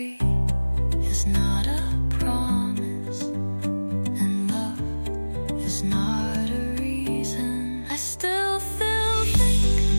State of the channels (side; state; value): both; inverted; correlation -1.00